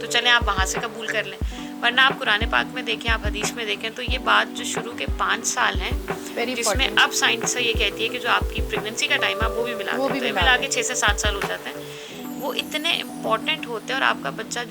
तो चलें आप वहाँ से कबूल कर लें। वरना आप कुरान पाक में देखें, आप हदीस में देखें, तो ये बात जो शुरू के 5 साल हैं, जिसमें अब साइंस ये कहती है कि जो आपकी प्रेगनेंसी का टाइम है वो भी मिला दें, तो ये मिला के 6 से 7 साल हो जाते हैं, वो इतने इम्पॉर्टेंट होते हैं। और आपका बच्चा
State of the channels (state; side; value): identical; both; correlation 1.00